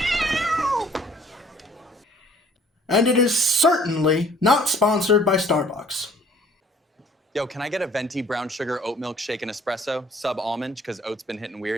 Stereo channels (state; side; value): normal; both; correlation 0.56